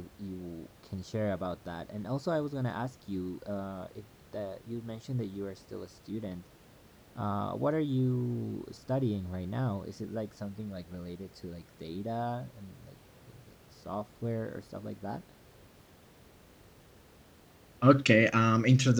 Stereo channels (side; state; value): both; identical; correlation 1.00